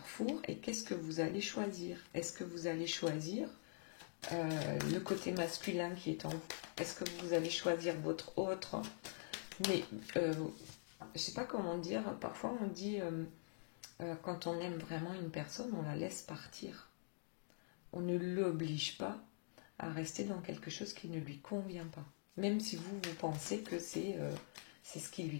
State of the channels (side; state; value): right; silent; digital silence